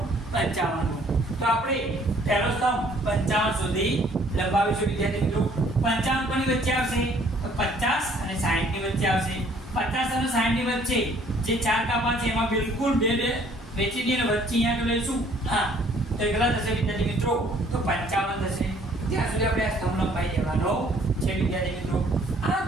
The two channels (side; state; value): both; normal; correlation 0.59